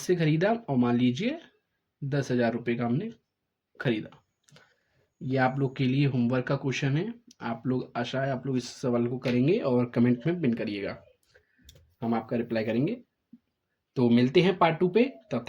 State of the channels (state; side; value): identical; both; correlation 1.00